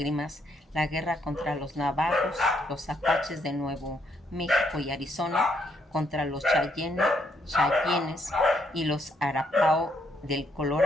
la guerra contra los navajos, los apaches de Nuevo México y Arizona, contra los Cheyennes y los Arapao del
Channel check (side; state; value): both; normal; correlation 0.73